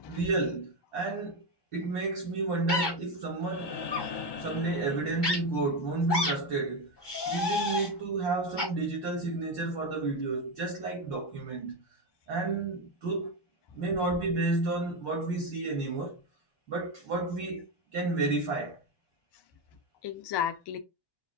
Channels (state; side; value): late; right; 1.2 ms